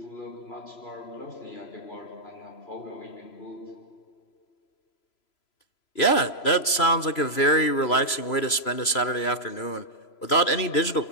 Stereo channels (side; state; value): right; late; 3.0 ms